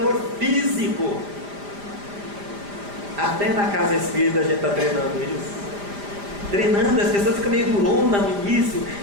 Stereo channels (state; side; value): late; left; 5.0 ms